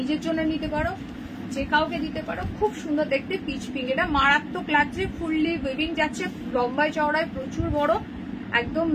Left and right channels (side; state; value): both; identical; correlation 1.00